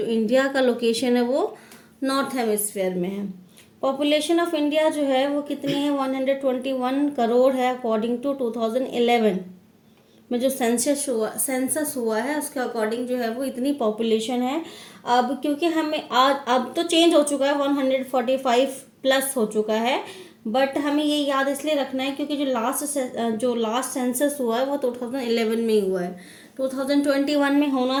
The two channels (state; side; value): identical; both; correlation 1.00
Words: इंडिया का लोकेशन है वो नॉर्थ हेमिस्फेयर में है। पॉपुलेशन ऑफ इंडिया जो है वो कितनी है, 121 करोड़ है अकॉर्डिंग टू 2011 में जो सेंसस हुआ है उसके अकॉर्डिंग जो है वो इतनी पॉपुलेशन है। अब क्योंकि हमें आज अब तो चेंज हो चुका है, 145 प्लस हो चुका है, बट हमें ये याद इसलिए रखना है क्योंकि जो लास्ट सेंसस हुआ है वो 2011 में ही हुआ है। 2021 में